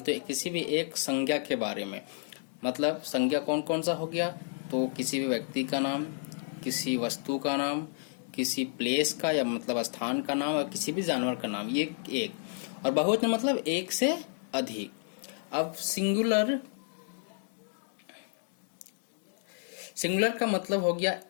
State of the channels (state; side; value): silent; right; digital silence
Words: तो किसी भी एक संज्ञा के बारे में, मतलब संज्ञा कौन कौन सा हो गया, तो किसी भी व्यक्ति का नाम, किसी वस्तु का नाम, किसी प्लेस का या मतलब स्थान का नाम और किसी भी जानवर का नाम, ये एक। और बहुवचन मतलब एक से अधिक। अब सिंगुलर का मतलब हो गया